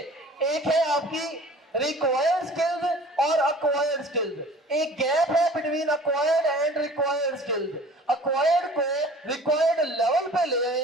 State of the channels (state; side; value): normal; both; correlation 0.46